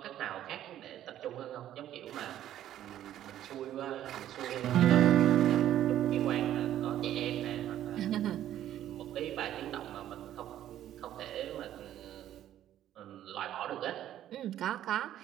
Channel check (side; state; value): left; quieter; 12.0 dB